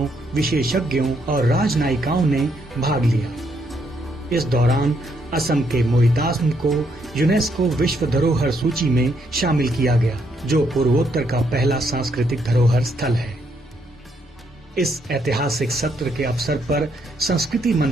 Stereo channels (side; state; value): both; normal; correlation 0.74